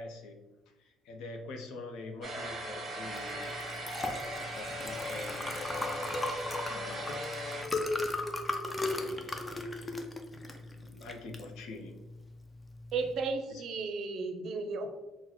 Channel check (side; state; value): both; normal; correlation 0.72